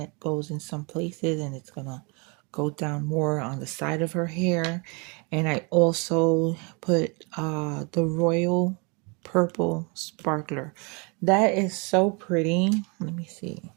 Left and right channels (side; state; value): left; quieter; 31.5 dB